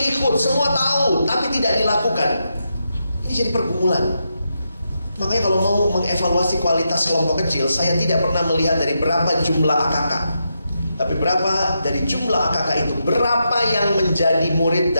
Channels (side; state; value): both; inverted; correlation -0.85